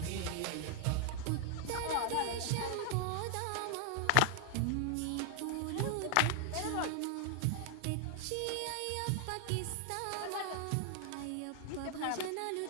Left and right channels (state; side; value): different; both; correlation 0.00